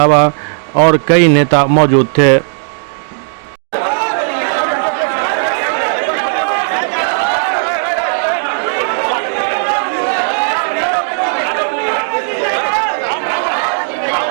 और कई नेता मौजूद थे।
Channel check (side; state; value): left; silent; digital silence